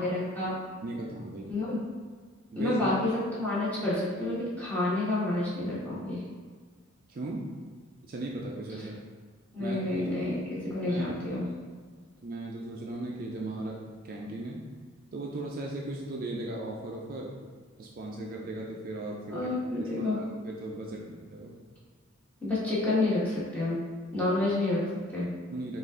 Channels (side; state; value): both; normal; correlation 0.55